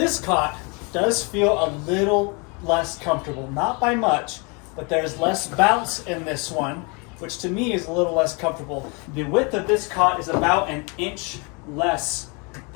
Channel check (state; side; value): quieter; right; 31.6 dB